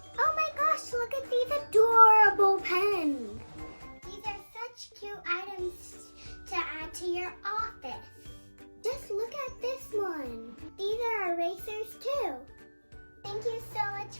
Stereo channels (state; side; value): inverted; both; correlation -1.00